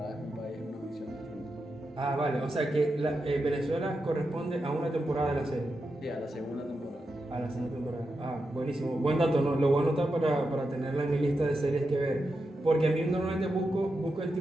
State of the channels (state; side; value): normal; both; correlation 0.88